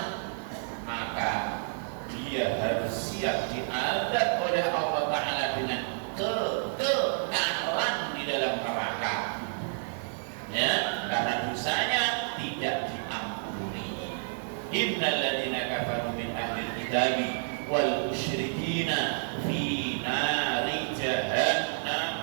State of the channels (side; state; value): left; silent; digital silence